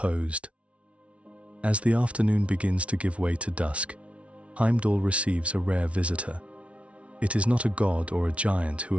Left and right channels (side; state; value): left; late; 0.062 ms